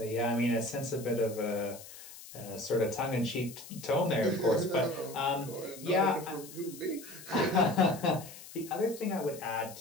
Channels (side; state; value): left; noise; hiss, 16 dB below the sound